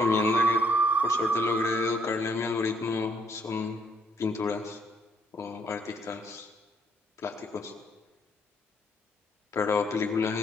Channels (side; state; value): both; normal; correlation 0.69